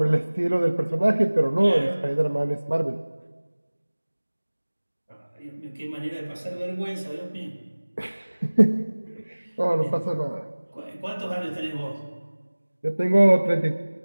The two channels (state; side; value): inverted; both; correlation -1.00